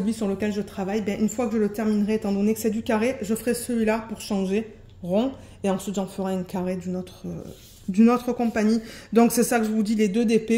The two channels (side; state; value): both; identical; correlation 1.00